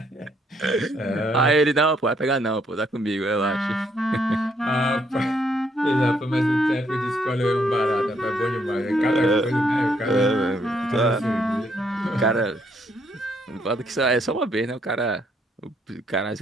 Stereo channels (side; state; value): both; normal; correlation 0.71